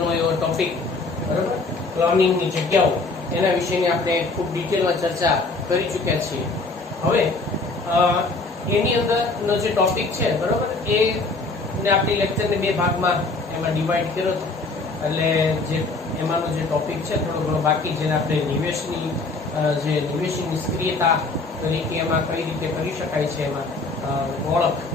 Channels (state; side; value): quieter; right; 3.6 dB